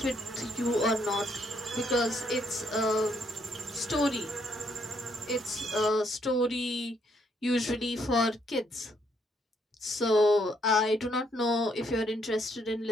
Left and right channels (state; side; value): normal; both; correlation 0.72